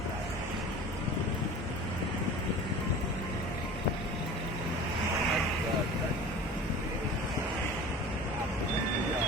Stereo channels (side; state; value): both; normal; correlation 0.39